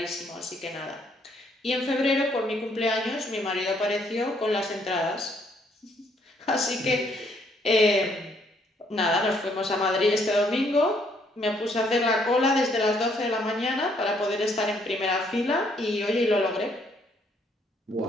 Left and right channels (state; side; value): normal; both; correlation 0.68